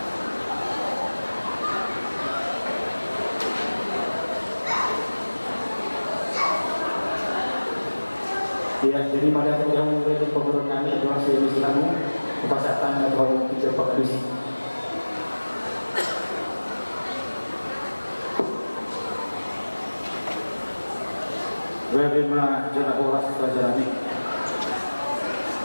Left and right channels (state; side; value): inverted; both; correlation -1.00